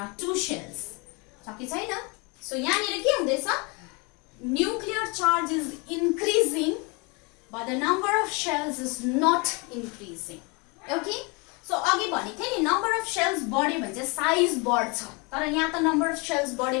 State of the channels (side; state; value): right; quieter; 29.9 dB